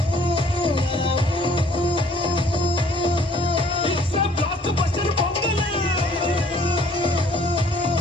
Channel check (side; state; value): both; normal; correlation 0.58